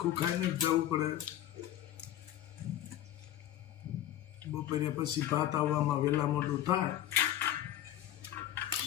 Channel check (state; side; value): quieter; right; 12.5 dB